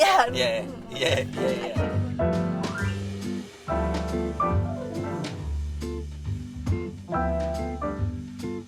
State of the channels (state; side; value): identical; both; correlation 1.00